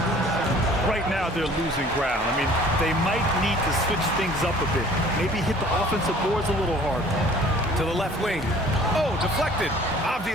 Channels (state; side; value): normal; both; correlation 0.51